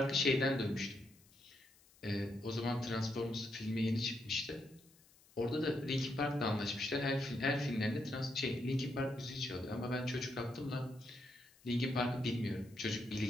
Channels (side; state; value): left; noise; hiss, 28 dB below the sound